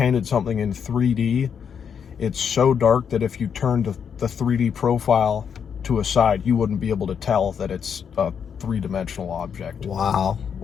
something in 3D, it's so dark that if you turned the 3D profile to a side, you wouldn't be able to tell that it's a three-dimensional object. Wow.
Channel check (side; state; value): right; quieter; 7.3 dB